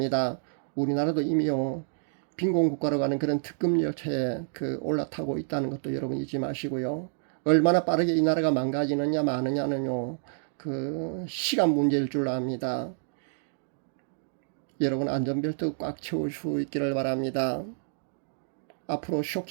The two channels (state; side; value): silent; left; digital silence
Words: 우리나라도 이미요, 빈곤 국가로 가는 그런 특급 열차에 올라타고 있다는 것도 여러분 잊지 마시고요. 얼마나 빠르게 이 나라가 망가지느냐 마느냐는요, 시간 문제일 줄 압니다. 여러분 안전벨트 꽉 채울 수 있기를 바랍니다. 앞으로